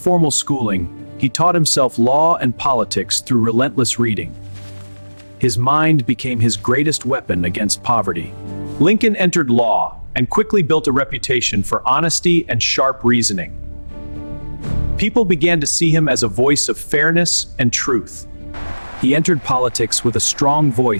schooling, he taught himself law and politics through relentless reading. His mind became his greatest weapon against poverty. Lincoln entered law and quickly built a reputation for honesty and sharp reasoning. People began to see him as a voice of fairness and truth. He entered politics with a strong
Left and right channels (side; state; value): both; inverted; correlation -1.00